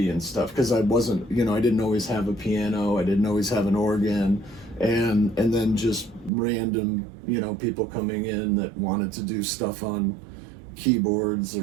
and stuff, because I wasn't, I didn't always have a piano, I didn't always have an organ. And then just random, people coming in that wanted to do stuff on keyboards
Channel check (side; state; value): left; drops out; at 6.3 s